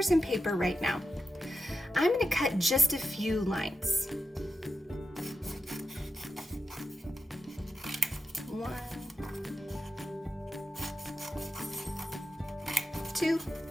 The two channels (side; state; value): both; normal; correlation 0.88